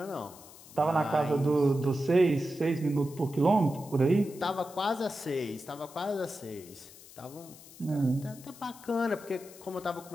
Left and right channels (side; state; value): left; noise; hiss, 20 dB below the sound